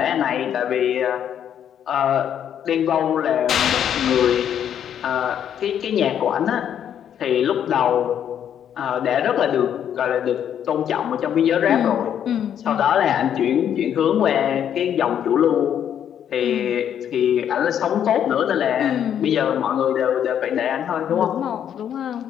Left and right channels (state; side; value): quieter; right; 9.4 dB